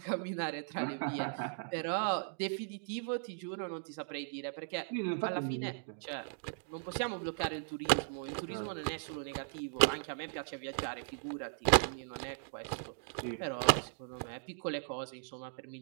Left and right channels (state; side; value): silent; left; digital silence